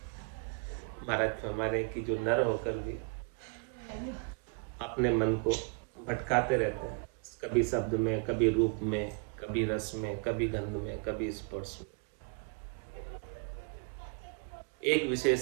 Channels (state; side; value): quieter; left; 38.1 dB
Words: महाराज हमारे की जो नर होकर भी अपने मन को भटकाते रहते हैं, कभी शब्द में, कभी रूप में, कभी रस में, कभी गंध में, कभी स्पर्श में, एक विषय